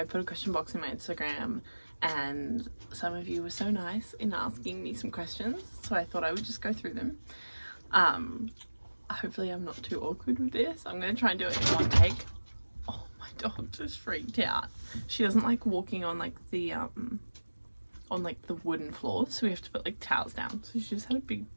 put a question box in my Instagram and some of you were so nice in asking me some questions, so I thought I would just go through them. Hopefully I'm not too awkward with this. I'm going to try and do it in one take. Oh, my dog just freaked out. She doesn't like walking on like the wooden floors, so we have to put like towels down, so she just had a big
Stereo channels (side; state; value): both; inverted; correlation -1.00